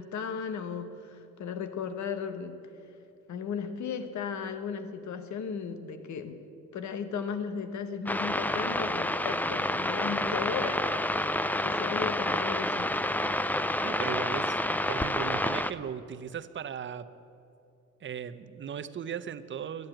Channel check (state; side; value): normal; both; correlation 0.52